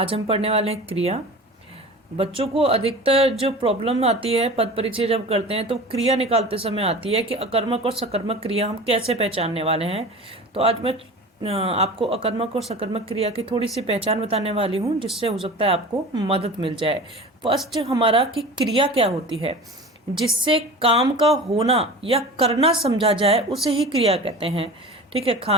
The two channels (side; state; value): both; normal; correlation 0.36